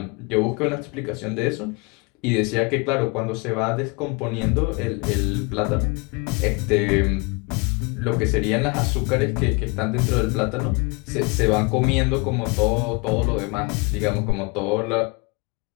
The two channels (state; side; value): quieter; right; 29.0 dB